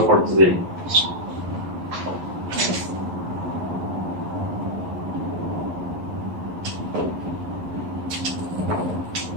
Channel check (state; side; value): late; left; 11 ms